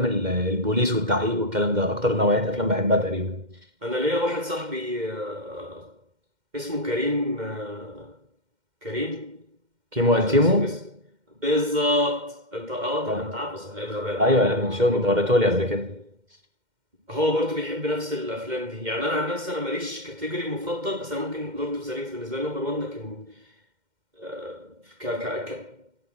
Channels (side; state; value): left; late; 2.1 ms